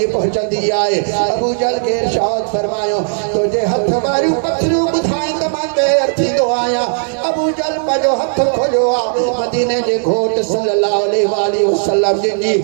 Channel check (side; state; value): left; silent; digital silence